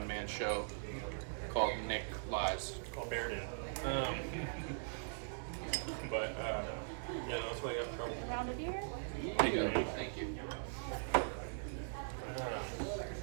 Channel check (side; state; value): left; silent; 50 dB below the other